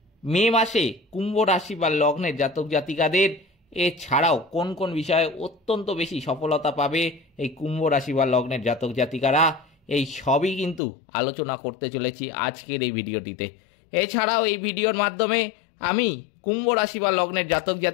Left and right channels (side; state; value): right; drops out; at 10.8 s